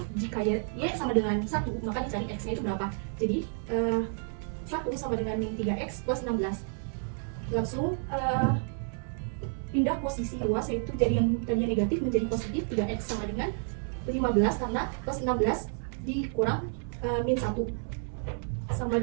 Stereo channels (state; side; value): silent; left; 58 dB below the other